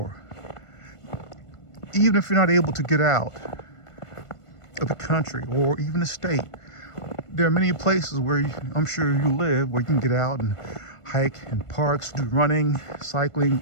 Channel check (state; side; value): late; right; 1.5 ms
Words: Even if you're not able to get out of the country or even the state, there are many places where I'm sure you live where you can get out and hike in parks, do running, cycling,